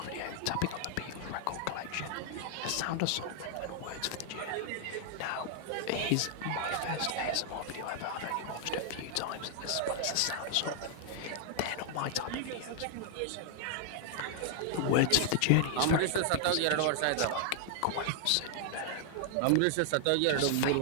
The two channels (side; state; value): both; different; correlation -0.01